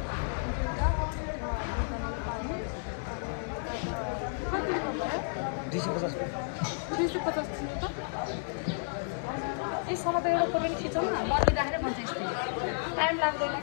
यसमा त एउटा फोटो खिचौँ न मर्दै राखेर भन्छ यस्तै टाइम लाग्दैन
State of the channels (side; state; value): right; silent; 55 dB below the other